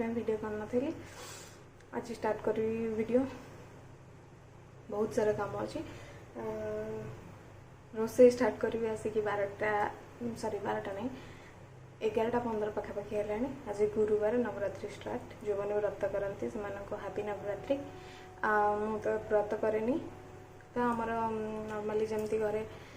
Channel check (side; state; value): both; identical; correlation 1.00